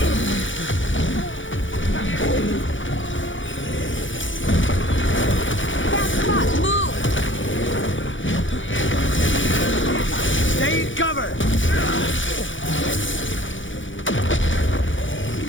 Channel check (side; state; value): right; late; 0.56 ms